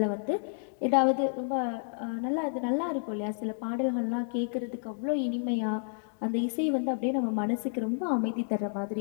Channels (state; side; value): silent; right; digital silence